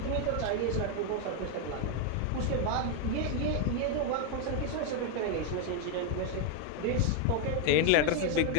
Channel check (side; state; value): both; different; correlation 0.01